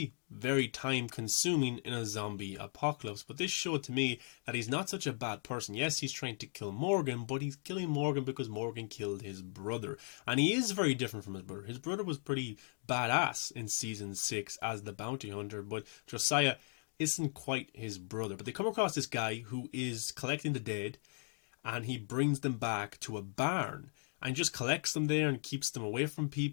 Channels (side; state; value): right; silent; 53 dB below the other